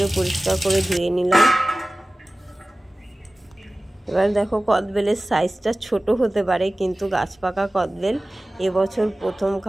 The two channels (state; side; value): normal; both; correlation 0.97